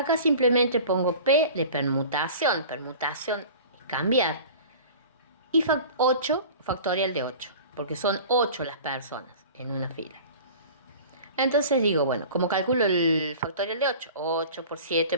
simplemente pongo P de permutación. Permutación es cambiar. Y 8, factorial de 8, porque son 8 las personas en una fila. Entonces digo, bueno, ¿cómo calculo el factorial de 8? 8 por 7,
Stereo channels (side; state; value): both; inverted; correlation -0.40